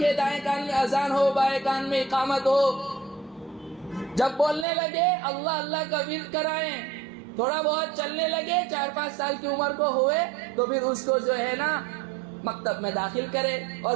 دائیں کان میں اذان ہو، بائیں کان میں اقامت ہو. جب بولنے لگے اللہ اللہ کا ورد کرائیں، تھوڑا بہت چلنے لگے 4-5 سال کی عمر کو ہوئے تو پھر اس کو جو ہے نا مکتب میں داخل کرے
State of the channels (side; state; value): left; drops out; at 4.7 s